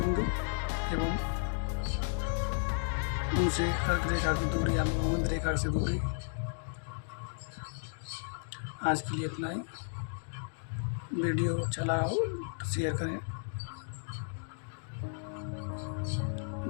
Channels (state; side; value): silent; right; digital silence